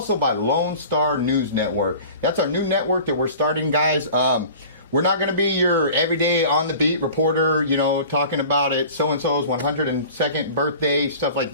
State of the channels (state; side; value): inverted; both; correlation -0.43